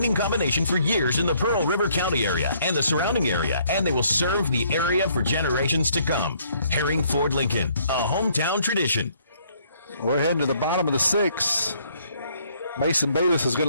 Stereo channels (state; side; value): inverted; both; correlation -0.65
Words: combination for years in the Pearl River County area and the surrounding area, and they will serve the area for generations to come. Herring Ford Lincoln, a hometown tradition. We're heading to the bottom of the sixth. Mason Bayless is going